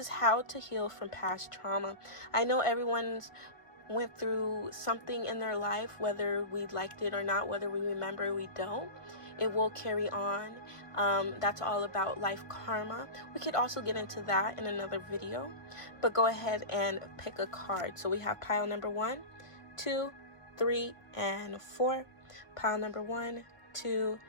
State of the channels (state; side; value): late; right; 1.8 ms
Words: how to heal from past trauma. I know everyone's went through something in their life, whether we liked it or not, whether we remember or we don't. It will carry on. That's all about life karma. We could also get into that in another video, but go ahead and pick a card. So we have pile number 1, 2, 3, and 4. Pile number 1, 2,